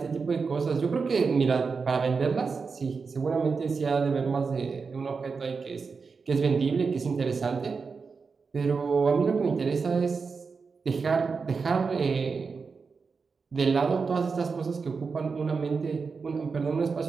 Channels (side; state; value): left; quieter; 5.0 dB